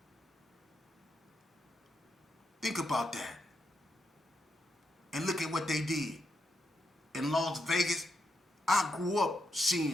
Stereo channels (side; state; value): both; normal; correlation 0.82